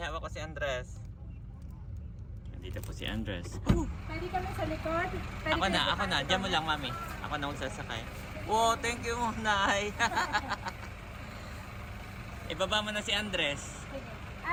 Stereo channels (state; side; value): identical; both; correlation 1.00